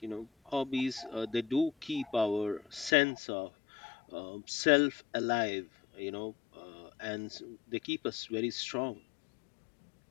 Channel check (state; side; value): drops out; right; at 3.0 s